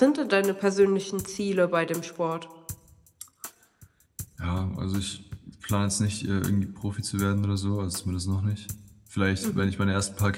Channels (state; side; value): identical; both; correlation 1.00